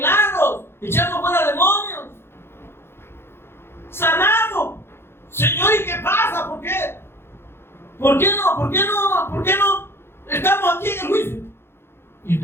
echamos fuera demonios, sanamos. Señor, ¿y qué pasa? ¿Por qué? ¿Por qué no estamos aquí en el juicio? ¿Y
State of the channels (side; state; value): right; late; 0.12 ms